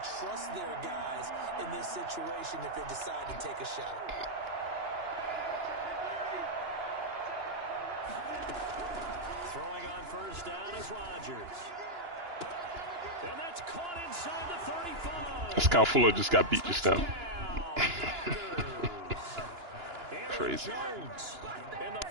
trust their guys in this situation if they decide to take a shot. Throwing on first down is Rodgers. And that's caught inside the 35. Scout Fuller just got beat just now. Crazy. Jones in the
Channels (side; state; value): left; late; 2.9 ms